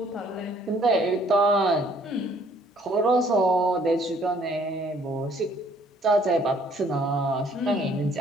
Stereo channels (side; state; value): both; normal; correlation 0.62